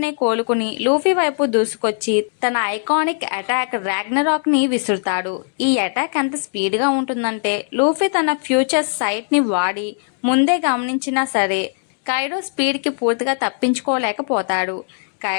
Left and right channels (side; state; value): right; silent; digital silence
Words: కోలుకుని లూఫీ వైపు దూసుకొచ్చి తన ఐకానిక్ అటాక్ రాగ్నరాక్ ని విసురుతాడు. ఈ అటాక్ ఎంత స్పీడ్ గా ఉంటుందంటే లూఫీ తన ఫ్యూచర్ సైట్ ని వాడి ముందే గమనించినా సరే కైడో స్పీడ్ కి పూర్తిగా తప్పించుకోలేకపోతాడు.